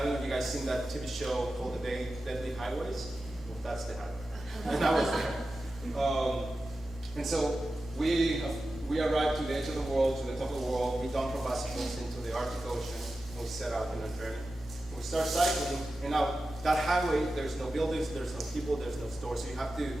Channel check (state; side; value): normal; both; correlation 0.93